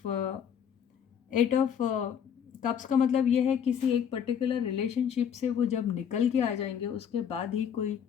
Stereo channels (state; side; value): quieter; right; 8.2 dB